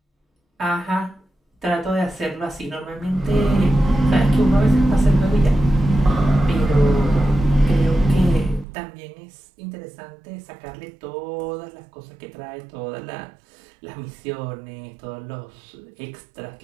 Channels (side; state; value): left; drops out; at 8.7 s